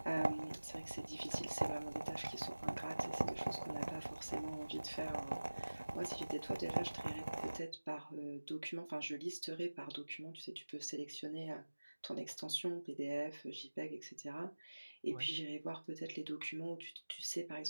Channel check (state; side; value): inverted; both; correlation -1.00